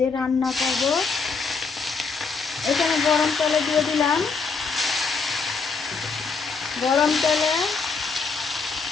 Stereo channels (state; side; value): quieter; right; 4.8 dB